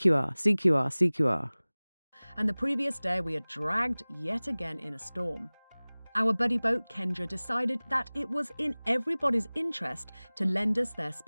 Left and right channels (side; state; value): both; inverted; correlation -1.00